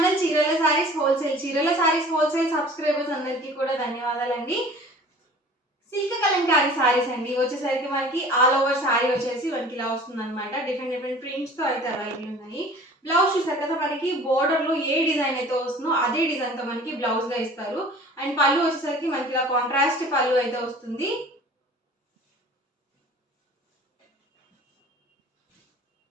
చీరల saris wholesale subscribers అందరికీ కూడా ధన్యవాదాలండి. సిల్క్ కలంకారీ సారీస్ అండి. వచ్చేసరికి మనకి ఆల్ ఓవర్ సారీ వచ్చేసి మనకి ఇలా వస్తుందన్నమాట. డిఫరెంట్ ప్రింట్స్తో అయితే అవైలబుల్ ఉన్నాయి. బ్లౌజ్ చూసారు కదా, మనకి బోర్డర్లో ఏ డిజైన్ అయితే వస్తుందో అదే డిజైన్తో మనకి బ్లౌజ్గా ఇస్తారు. అండ్ పళ్ళు వచ్చేసరికి మనకి ఇలా కాంట్రాస్ట్ పళ్ళు అయితే వస్తుంది.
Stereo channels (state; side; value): normal; both; correlation 0.46